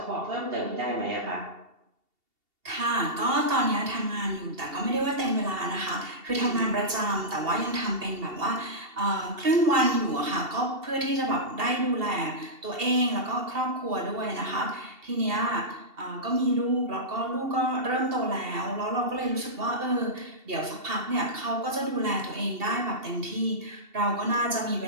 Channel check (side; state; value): left; late; 2.7 ms